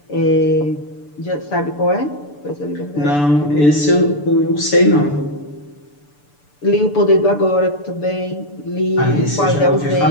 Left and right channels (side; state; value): right; late; 6.8 ms